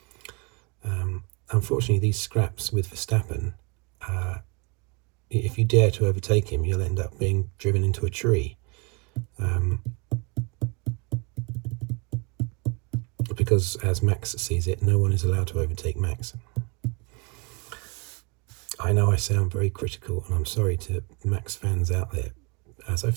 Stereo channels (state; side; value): quieter; left; 31.6 dB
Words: Unfortunately, these scraps with Verstappen, if you dare to overtake him, you'll end up being driven into a tree. Because, as Max sees it, no one is allowed to overtake Max. I know I sound very critical, and I'm sorry to Max fans out there. As I've